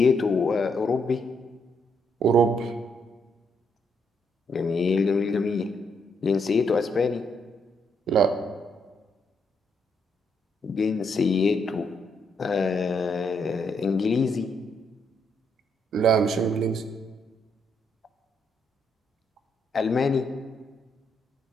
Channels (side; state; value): both; normal; correlation 0.75